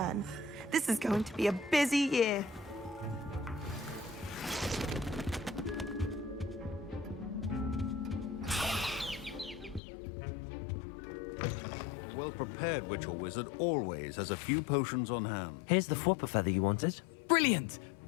This is going to be a busy year. A well-prepared prepared witch or wizard always has a few potions on hand. Here's the flopper feather you wanted. Brilliant!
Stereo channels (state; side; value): drops out; right; at 9.8 s